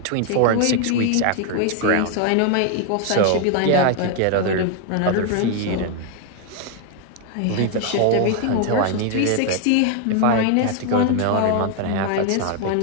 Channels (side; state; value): both; different; correlation 0.01